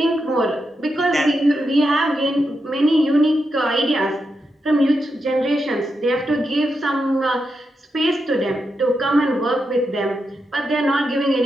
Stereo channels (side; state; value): both; normal; correlation 0.85